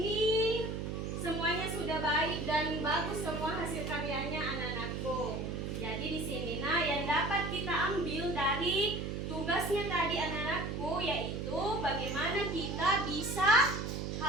semuanya sudah baik dan bagus semua hasil karyanya anak-anakku. Jadi di sini yang dapat kita ambil dari tugasnya tadi anak-anakku yaitu bagaimana kita bisa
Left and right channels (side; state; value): right; noise; hum, 3 dB below the sound